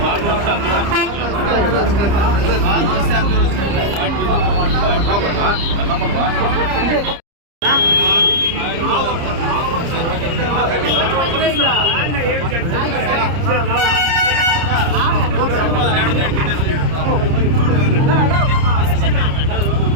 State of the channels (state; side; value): late; left; 30 ms